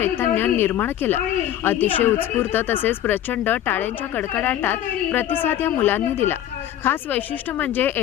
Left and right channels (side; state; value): right; quieter; 11.9 dB